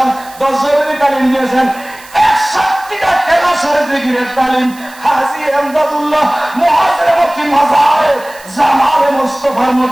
10 জনের তালিম দিয়েছেন। 61টা ক্লাসের জিকিরের তালিম হাজী এমদাদুল্লাহ মুহাজির মক্কি মাজারে জামালে মুস্তাফার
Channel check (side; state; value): right; noise; hiss, 22 dB below the sound